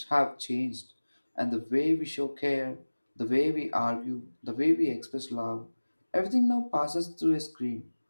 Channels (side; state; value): both; inverted; correlation -1.00